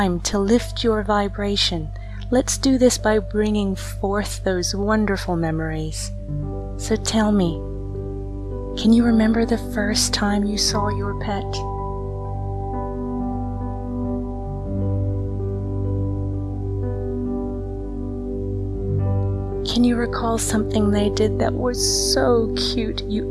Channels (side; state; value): both; identical; correlation 1.00